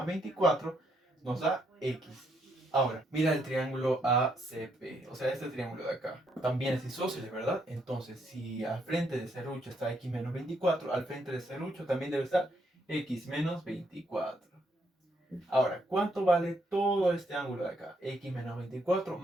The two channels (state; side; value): normal; both; correlation 0.74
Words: 24, nos da x. Ahora, mira el triángulo ACP, o sea, este triángulo de acá. También es isósceles, ¿verdad? Entonces, si al frente de serrucho está x menos 24, al frente de serrucho también debe estar x menos 24. Ahora, ¿cuánto vale todo este ángulo de acá? X menos 24